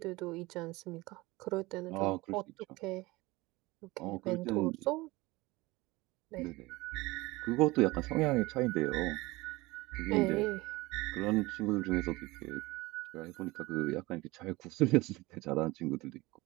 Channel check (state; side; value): quieter; left; 21.5 dB